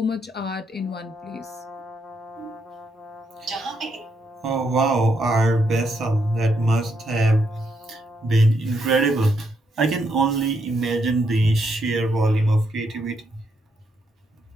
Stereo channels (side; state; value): both; normal; correlation 0.78